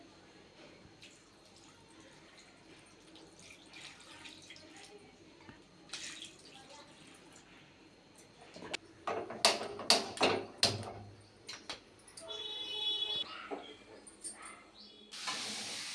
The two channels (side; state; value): both; identical; correlation 1.00